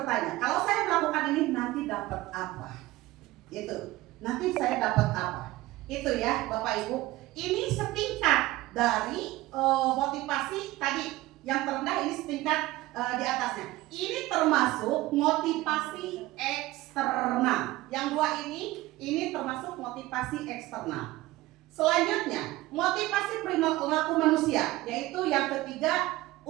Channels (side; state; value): left; quieter; 18.1 dB